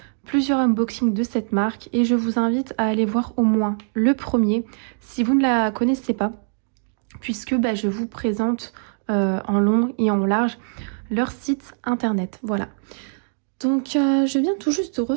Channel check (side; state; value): left; silent; digital silence